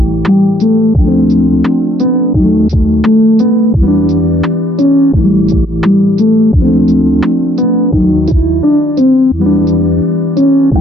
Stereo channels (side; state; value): both; normal; correlation 0.69